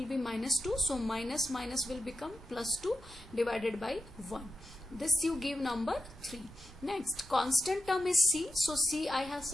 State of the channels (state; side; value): noise; right; rumble, 19 dB below the sound